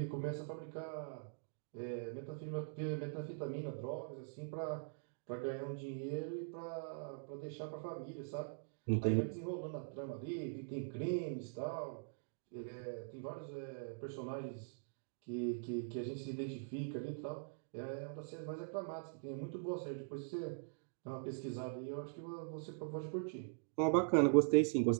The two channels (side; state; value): left; silent; digital silence